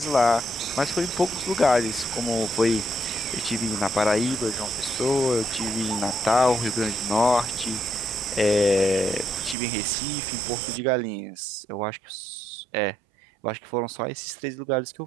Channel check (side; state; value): left; drops out; at 9.6 s